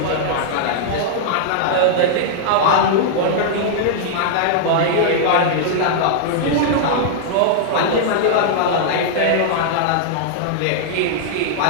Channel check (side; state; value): both; different; correlation -0.01